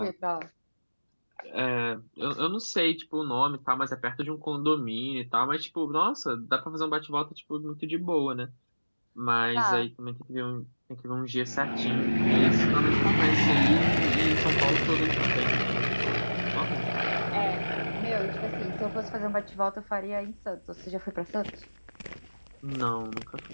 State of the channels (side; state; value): both; inverted; correlation -1.00